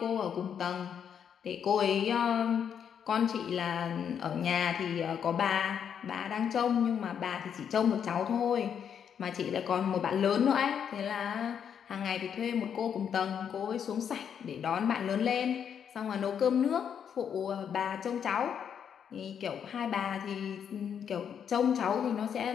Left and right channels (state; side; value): quieter; right; 8.0 dB